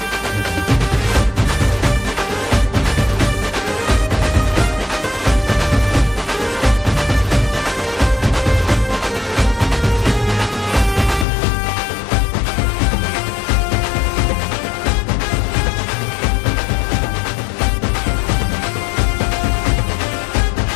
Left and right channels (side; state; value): right; drops out; at 11.2 s